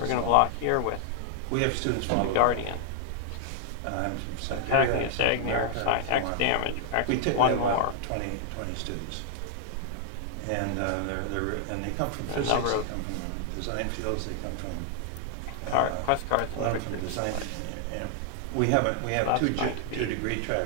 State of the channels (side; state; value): both; different; correlation 0.00